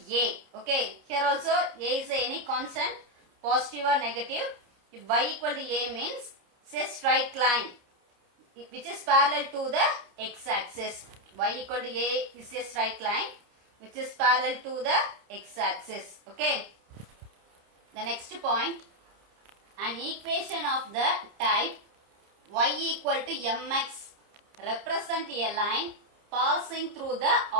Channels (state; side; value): late; left; 29 ms